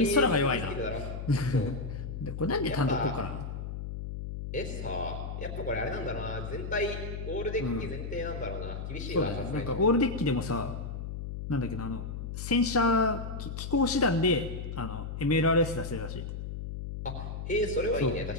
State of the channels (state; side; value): noise; left; hum, 6 dB below the sound